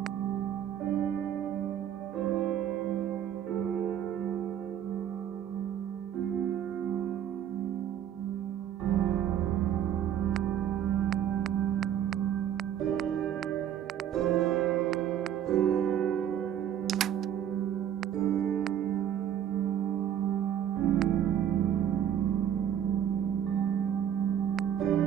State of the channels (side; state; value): left; quieter; 9.9 dB